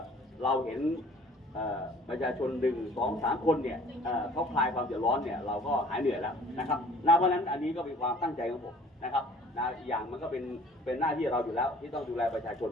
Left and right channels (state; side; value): normal; both; correlation 0.52